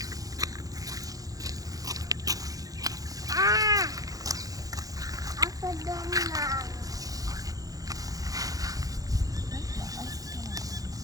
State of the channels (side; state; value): left; late; 0.17 ms